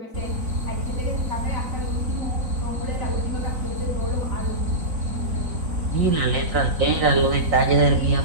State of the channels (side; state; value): left; late; 3.9 ms